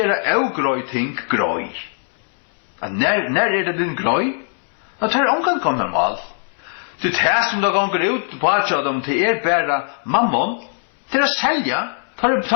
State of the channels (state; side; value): silent; right; 66 dB below the other